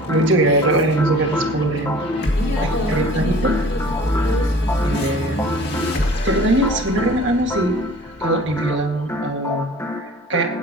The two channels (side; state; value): both; normal; correlation 0.46